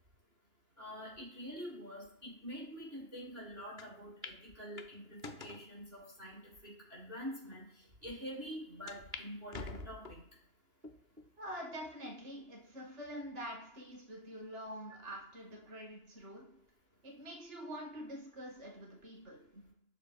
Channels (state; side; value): late; left; 2.9 ms